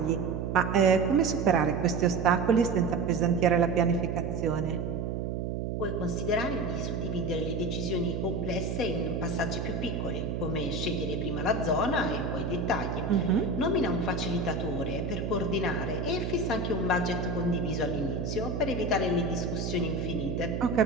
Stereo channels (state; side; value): noise; right; hum, 2 dB below the sound